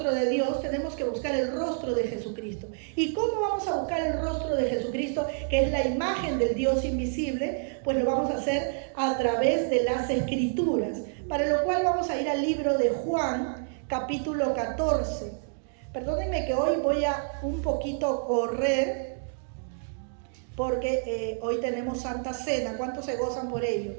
de Dios, tenemos que buscar el rostro de Jesucristo. ¿Y cómo vamos a buscar el rostro de Jesucristo, que es la imagen del Dios invisible? Pues lo vamos a hacer a través de las Escrituras, para lo cual vamos a ir al libro de Juan, capítulo 14. Perdónenme que hoy voy a un poquito correr, porque hoy tenemos Santa Cena. ¿Cuántos se gozan por ello?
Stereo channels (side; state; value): left; silent; digital silence